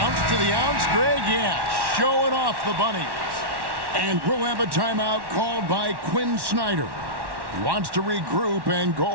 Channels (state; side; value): late; left; 1.1 ms